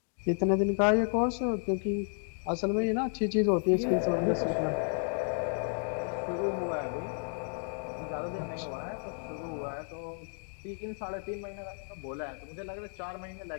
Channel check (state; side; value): silent; right; 56 dB below the other